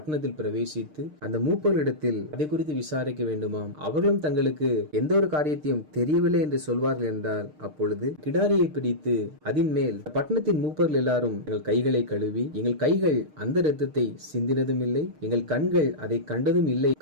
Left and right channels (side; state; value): left; late; 6.5 ms